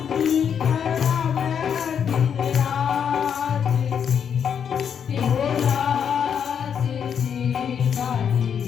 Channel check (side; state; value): right; quieter; 7.7 dB